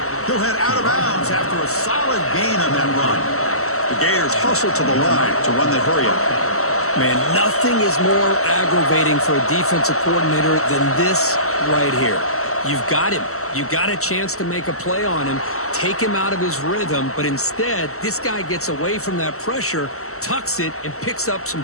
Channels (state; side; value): late; right; 0.63 ms